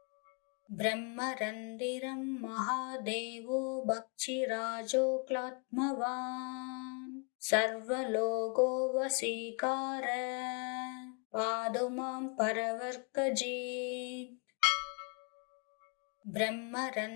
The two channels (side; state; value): right; quieter; 36.6 dB